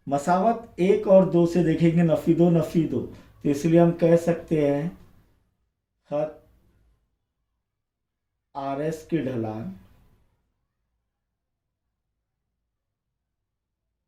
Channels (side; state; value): both; identical; correlation 1.00